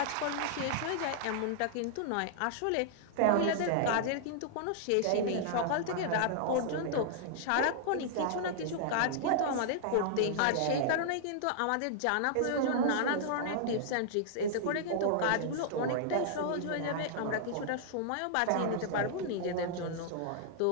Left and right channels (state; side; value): different; both; correlation -0.01